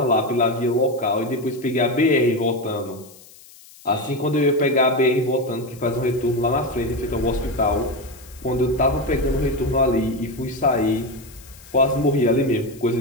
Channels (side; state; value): left; noise; hiss, 23 dB below the sound